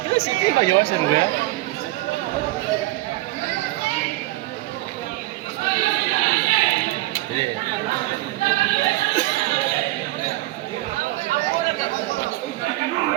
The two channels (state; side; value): quieter; left; 19.1 dB